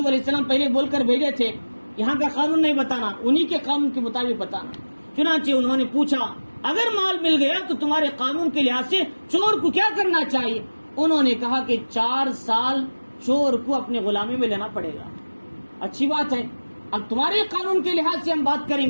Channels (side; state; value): both; inverted; correlation -1.00